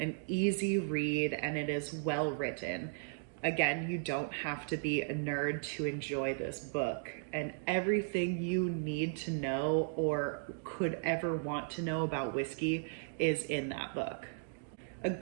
easy read, and it is well written. Again, you don't have to be a nerd to enjoy this book, and everything you need to know or could ever want to know about whiskey is in that book. A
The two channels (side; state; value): left; silent; digital silence